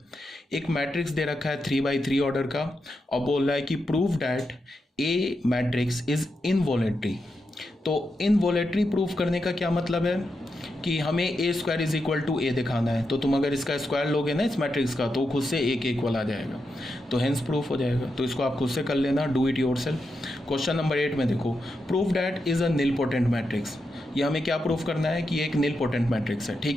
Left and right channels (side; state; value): both; normal; correlation 0.86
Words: एक मैट्रिक्स दे रखा है 3x3 ऑर्डर का और बोल रहा है कि prove that a matrix is involutory. तो इनवॉलेटरी प्रूफ करने का क्या मतलब है कि हमें ए स्क्वायर इज इक्वल टू ए दिखाना है। तो तुम अगर इसका स्क्वायर लोगे ना इस मैट्रिक्स का, तो खुद से ए के इक्वल आ जाएगा, तो हेंस प्रूफ हो जाएगा। तो इसको आप खुद से कर लेना, do it yourself. Question number 8 में देखो, proof that is a nilpotent matrix. ये हमें क्या प्रूफ करना है कि एक निलपोटेंट मैट्रिक्स है।